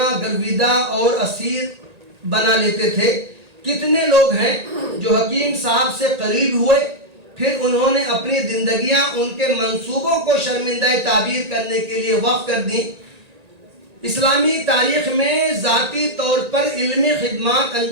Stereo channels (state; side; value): late; left; 1.9 ms